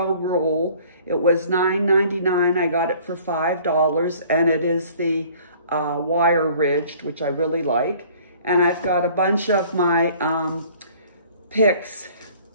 roll. It was $9.99. I got it for $5, and it is the wire ridged, which I really like. And I've got a bunch of my picks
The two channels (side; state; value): both; inverted; correlation -0.53